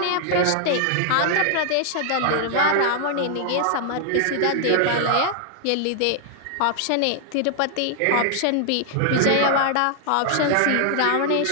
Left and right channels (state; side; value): different; both; correlation 0.00